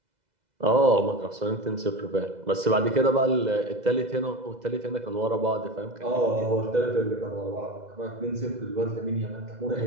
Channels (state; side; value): late; left; 2.0 ms